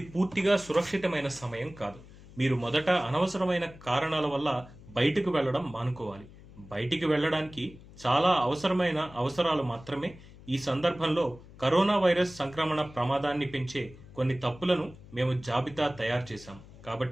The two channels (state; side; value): noise; left; hum, 20 dB below the sound